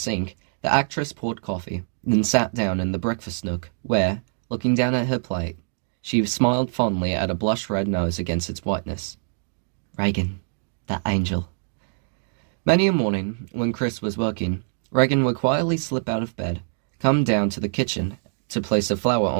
the actress poured coffee, then sat down in the breakfast nook, where, looking down at her plate, she smiled fondly at a blush-red nose against its whiteness. Reagan, that angel. Many a morning, when Chris was working, Reagan would quietly slip out of bed, come down to the kitchen to place a flower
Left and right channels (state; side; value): silent; left; digital silence